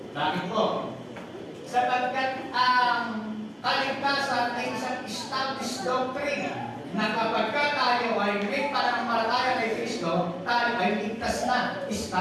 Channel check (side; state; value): both; identical; correlation 1.00